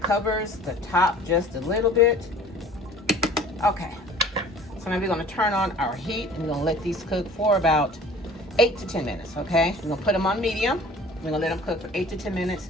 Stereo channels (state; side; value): normal; both; correlation 0.47